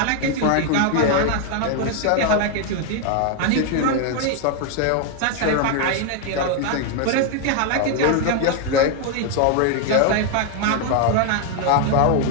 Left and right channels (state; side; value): different; both; correlation 0.01